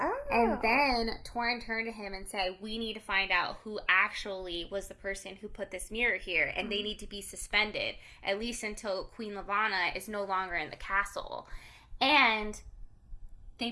And then Torrin turned to him and said, we need to find out who actually was the person who put this mirror here, and they need to be suspended, at least until Queen Lavanna is no longer in the castle. And they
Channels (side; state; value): both; identical; correlation 1.00